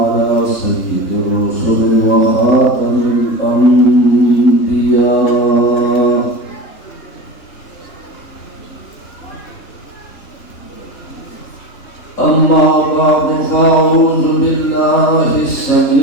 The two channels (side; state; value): right; late; 3.4 ms